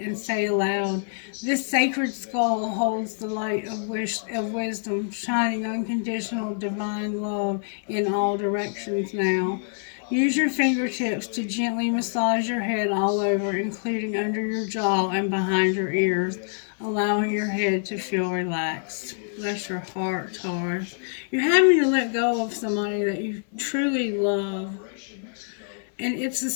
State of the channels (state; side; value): silent; right; 57 dB below the other